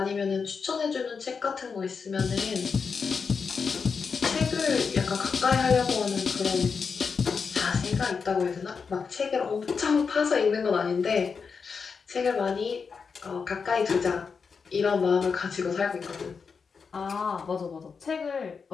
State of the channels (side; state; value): right; quieter; 5.5 dB